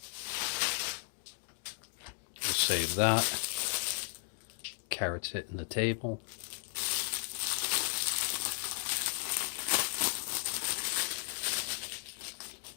We'll save that. Carrots hitting the table.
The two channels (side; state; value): right; silent; digital silence